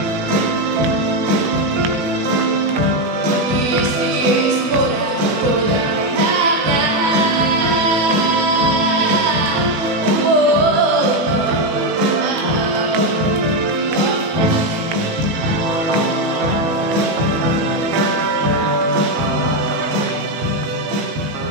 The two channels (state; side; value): late; left; 18 ms